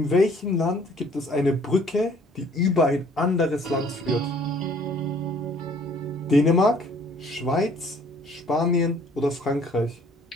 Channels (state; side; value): normal; both; correlation 0.57